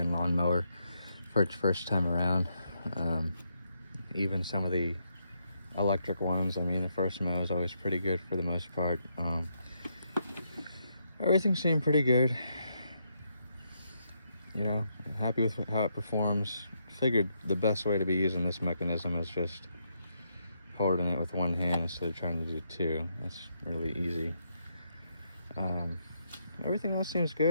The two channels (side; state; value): both; inverted; correlation -0.79